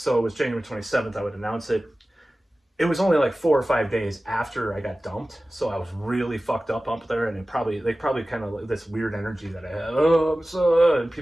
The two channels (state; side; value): normal; both; correlation 0.96